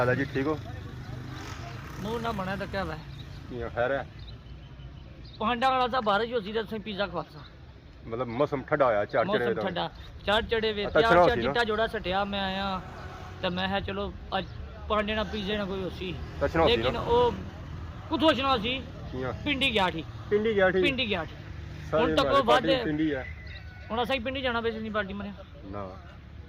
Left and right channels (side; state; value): both; identical; correlation 1.00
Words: है जी ठीक हो मुंह ना बना तो क्या है खैर है पांडा वाला सा बारिश होती तो पिज्जा खवासा मतलब मौसम ठंडा होया चार चढ़े ठंडा चार चढ़े वे अच्छा चार चिट्टा जोड़ा सटिया मैं आया तो मैं है चलो अज पांडे ना पिज्जे ना कोई होसी लेकिन वो कुछ होना सी पिंडी गया थी पिंडी गया थी हुन तक वो बाद पिंडी है हुन असा पिंडी जाना बेस नहीं पार्टी मने ना